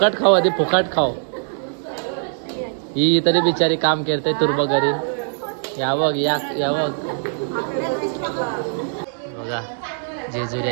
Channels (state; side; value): silent; left; 65 dB below the other